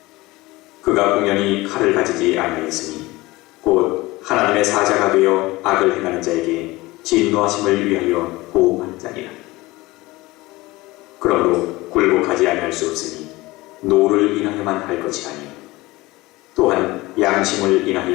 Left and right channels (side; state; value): right; quieter; 20.4 dB